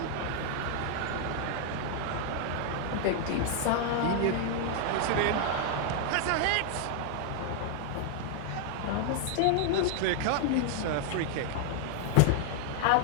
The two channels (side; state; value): both; different; correlation 0.00